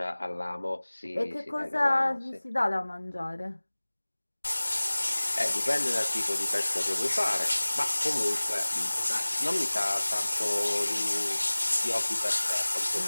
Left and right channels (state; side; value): inverted; both; correlation -1.00